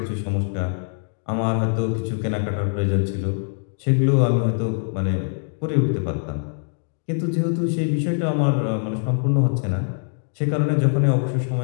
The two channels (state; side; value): silent; right; 59 dB below the other